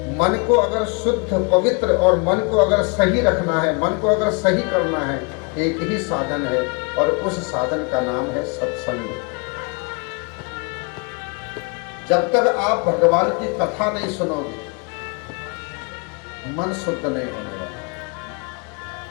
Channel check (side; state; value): right; quieter; 32.7 dB